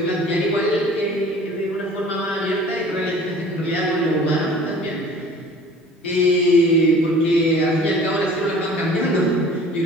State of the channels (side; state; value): both; normal; correlation 0.47